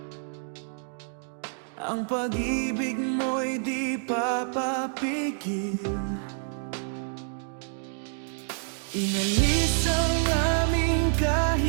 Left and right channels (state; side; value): silent; left; digital silence